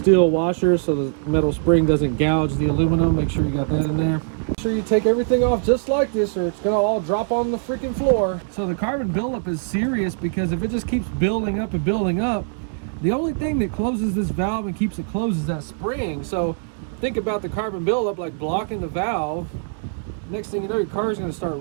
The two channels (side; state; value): left; silent; digital silence